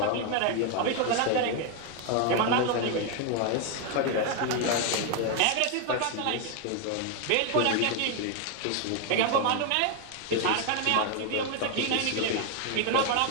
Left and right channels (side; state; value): both; different; correlation 0.01